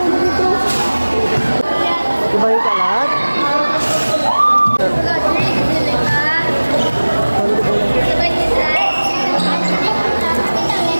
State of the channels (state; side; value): inverted; both; correlation -1.00